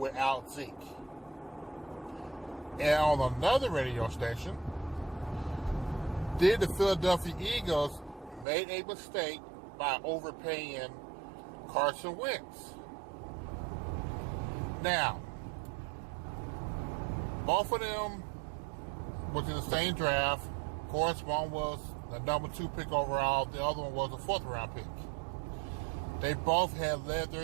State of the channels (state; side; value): drops out; left; at 8.5 s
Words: Zeke? And on another radio station, did the Philadelphia Eagles make a mistake by overpaying Carson Wentz? Now, both of them was in the same draft. Of course, one was the number 2 pick overall. The other one was a 4th round pick. They both had led